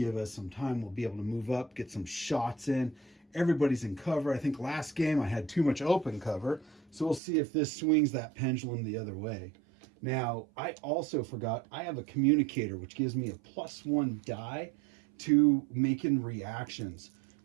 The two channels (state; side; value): drops out; left; at 7.2 s